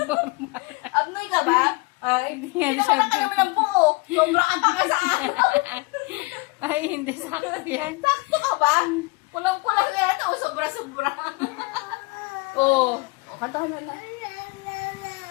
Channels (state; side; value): quieter; right; 25.9 dB